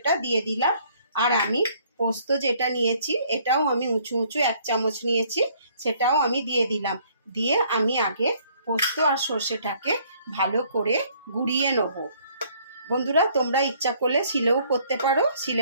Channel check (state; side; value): inverted; both; correlation -0.62